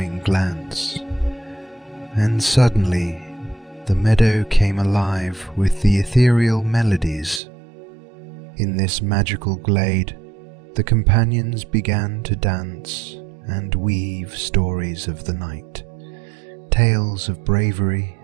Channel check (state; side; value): drops out; left; at 7.4 s